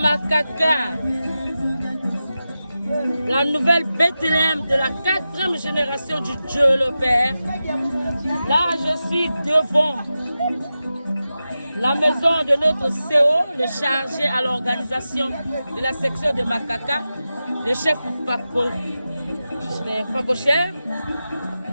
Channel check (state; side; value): inverted; both; correlation -0.92